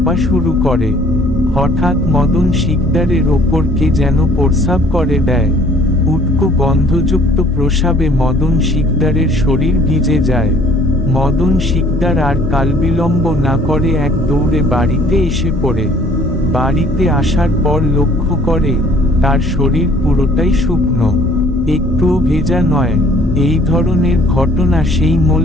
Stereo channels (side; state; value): both; normal; correlation 0.57